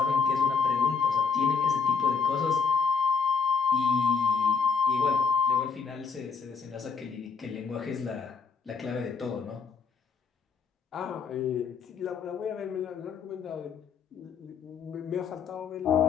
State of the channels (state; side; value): quieter; right; 5.5 dB